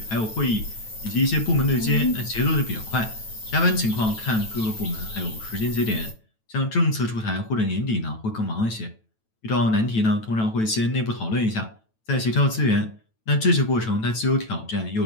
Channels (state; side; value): late; right; 9.1 ms